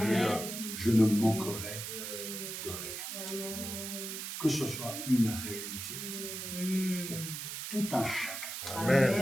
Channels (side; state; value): right; noise; hiss, 6 dB below the sound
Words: Je ne manquerai de rien. Que ce soit une réalité pour tout un chacun,